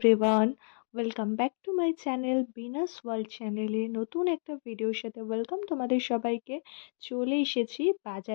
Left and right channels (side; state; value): right; silent; 57 dB below the other